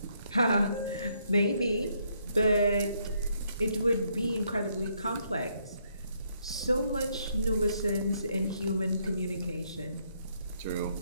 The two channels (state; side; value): inverted; both; correlation -0.73